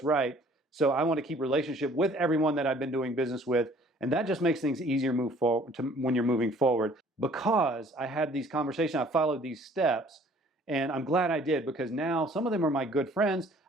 right, so I want to keep relationship with everyone that I've been doing business with, and that just makes things easier move forward when you're moving forward. Because I had these conversations, I followed these steps, and I'm glad I did, because now some of them are my good friends.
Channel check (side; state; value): both; normal; correlation 0.56